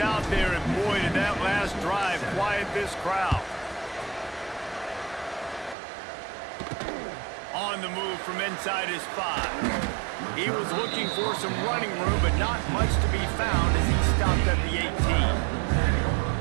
out there, and boy, did that last drive quiet this crowd. On the move from inside his 5. He was looking for some running room, but not much to be found as he stopped at the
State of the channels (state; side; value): drops out; left; at 5.8 s